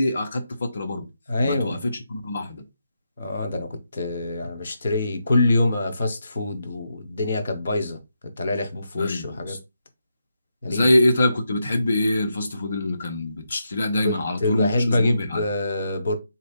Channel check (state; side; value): inverted; both; correlation -0.84